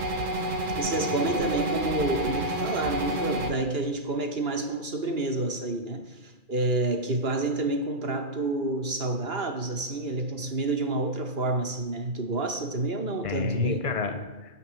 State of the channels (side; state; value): left; late; 2.4 ms